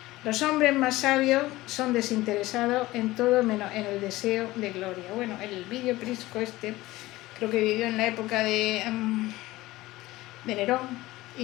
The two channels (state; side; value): quieter; right; 18.2 dB